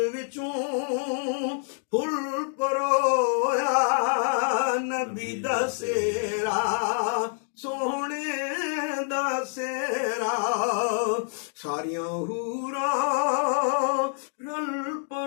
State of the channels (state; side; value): silent; right; 60 dB below the other